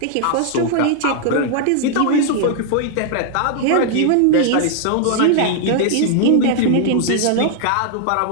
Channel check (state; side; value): different; both; correlation -0.01